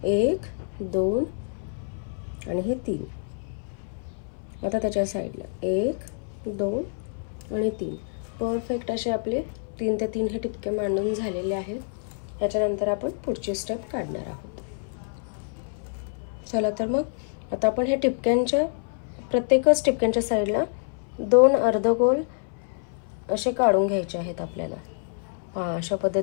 1 2 आणि हे 3। आता त्याच्या साइडला 1 2 आणि 3 परफेक्ट असे आपले 3 ते 3 हे टिपके मांडून झालेले आहेत। त्याच्यानंतर आपण पुढची स्टेप काढणार आहोत। चला तर मग आता आपण हे टिपक्यांच्या प्रत्येकच टिपक्यांच्या साइडला 2 अर्धगोल असे काढून घ्यायचे आहेत आपल्याला। अशा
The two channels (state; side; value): silent; right; 60 dB below the other